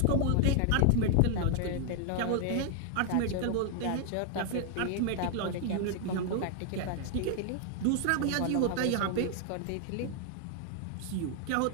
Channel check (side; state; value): both; different; correlation 0.00